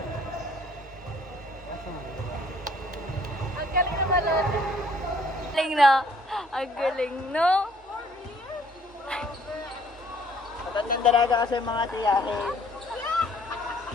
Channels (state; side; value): normal; both; correlation 0.60